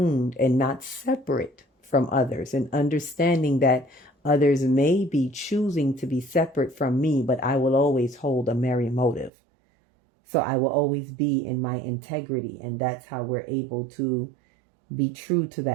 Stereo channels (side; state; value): left; drops out; at 9.3 s